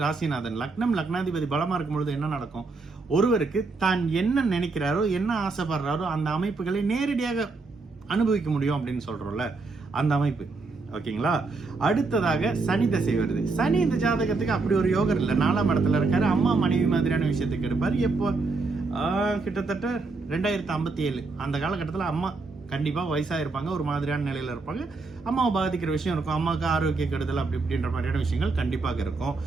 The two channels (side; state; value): left; quieter; 3.9 dB